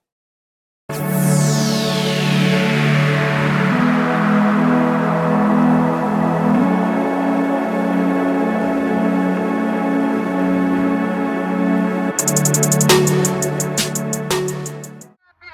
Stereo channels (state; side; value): identical; both; correlation 1.00